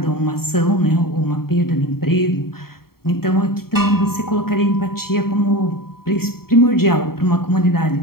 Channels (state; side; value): late; right; 0.94 ms